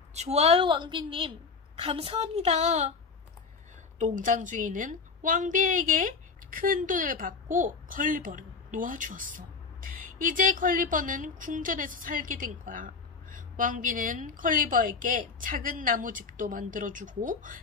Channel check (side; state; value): right; quieter; 4.9 dB